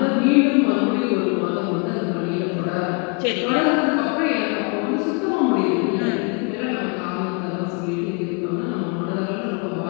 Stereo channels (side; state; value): right; quieter; 34.8 dB